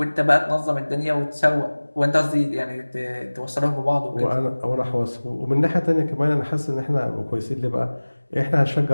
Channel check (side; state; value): both; inverted; correlation -1.00